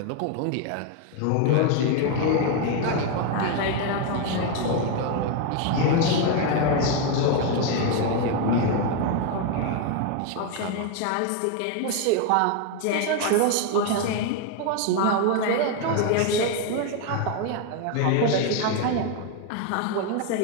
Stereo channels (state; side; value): different; both; correlation 0.01